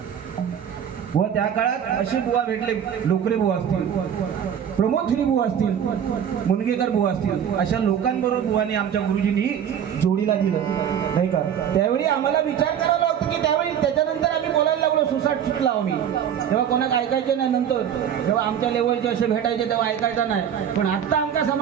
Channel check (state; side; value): quieter; left; 8.9 dB